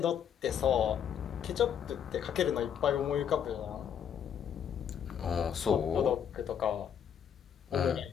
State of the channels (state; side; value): quieter; right; 8.5 dB